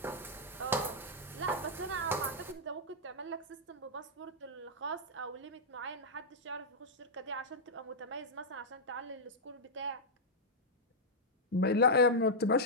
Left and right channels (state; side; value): normal; both; correlation -0.07